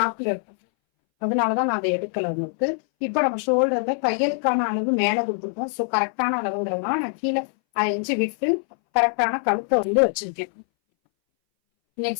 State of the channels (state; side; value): silent; right; 61 dB below the other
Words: இருக்கும். அதனாலதான் நான் அதை எடுக்கல உங்களுக்கு. இப்ப நம்ம ஷோல்டர்ல தையலுக்கான அளவு மேல கொடுத்துருக்கோம். சோ கரெக்டான அளவுங்கிறதுனால நான் கீழே 5 இன்ச்சு விட்டு கரெக்டான கழுத்தை வந்து வச்சிருக்கேன்.